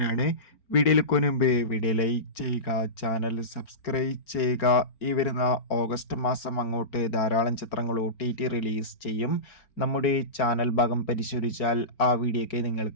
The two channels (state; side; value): late; right; 4.4 ms